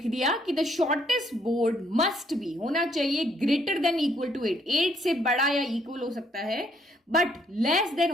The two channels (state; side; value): normal; both; correlation 0.69